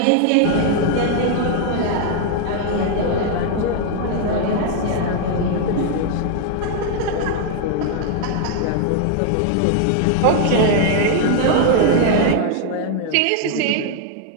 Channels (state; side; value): different; both; correlation 0.00